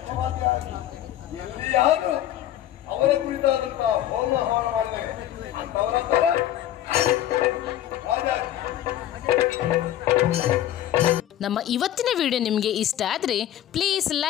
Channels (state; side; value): quieter; right; 12.2 dB